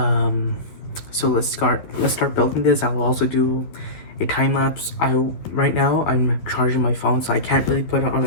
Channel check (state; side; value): late; right; 12 ms